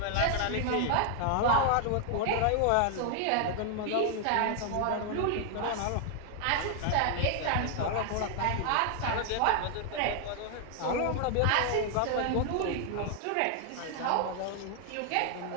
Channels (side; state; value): both; different; correlation 0.00